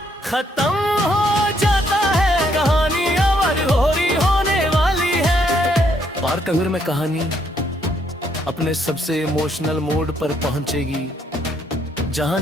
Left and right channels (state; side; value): normal; both; correlation 0.71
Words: खत्म हो जाता है। कहानी अब होरी होने वाली है। पार्टनर में कहानी अपने सबसे इमोशनल मोड पर पहुंचेगी,